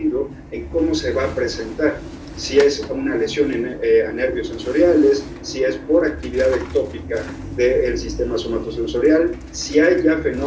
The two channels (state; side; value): identical; both; correlation 1.00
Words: en cómo se va a presentar. Si es una lesión a nervios sensoriales, si es por actividad ectópica del sistema somatosensorial, si hay ya